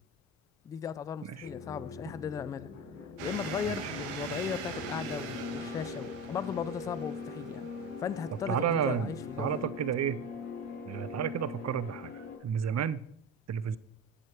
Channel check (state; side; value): normal; both; correlation 0.27